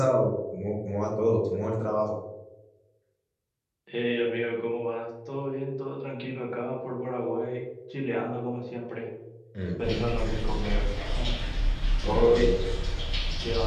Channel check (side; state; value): both; identical; correlation 1.00